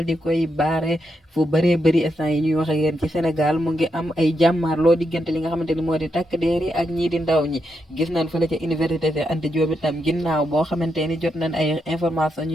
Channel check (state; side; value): normal; both; correlation 0.82